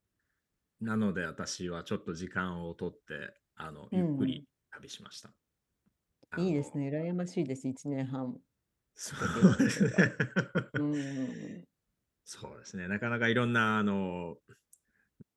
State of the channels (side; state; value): both; identical; correlation 1.00